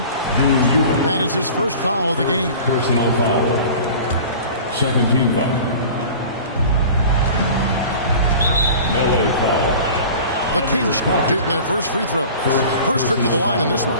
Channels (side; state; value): both; inverted; correlation -0.40